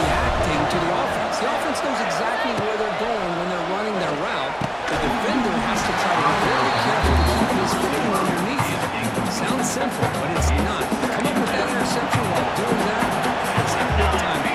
to the offense. The offense knows exactly where they're going when they're running their route. The defender has to try to be very careful to keep his footing underneath him. Sounds simple, but it's not. Come up with that interception while doing that. It's a big-time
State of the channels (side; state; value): both; identical; correlation 1.00